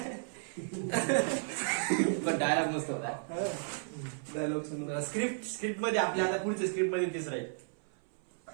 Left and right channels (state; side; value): silent; left; 55 dB below the other